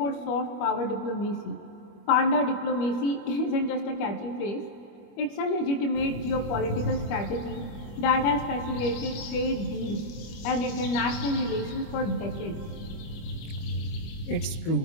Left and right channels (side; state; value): right; late; 25 ms